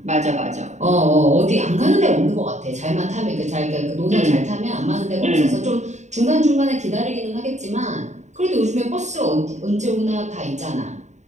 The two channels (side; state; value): left; late; 0.34 ms